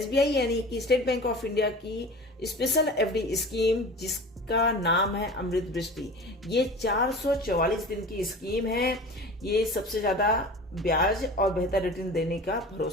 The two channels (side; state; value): both; normal; correlation 0.37